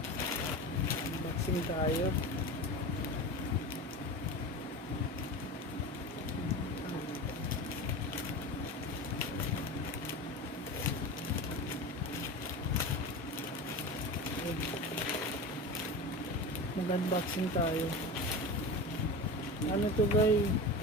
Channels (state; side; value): normal; both; correlation 0.28